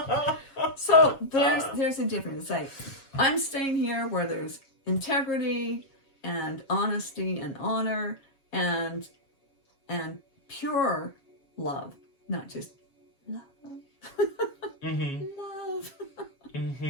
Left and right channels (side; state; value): right; late; 7.3 ms